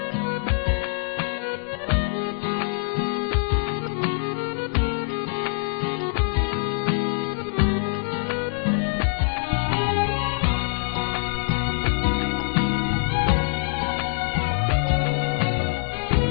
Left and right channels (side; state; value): right; silent; digital silence